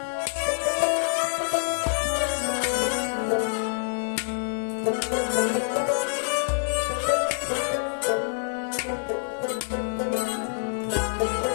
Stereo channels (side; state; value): right; silent; digital silence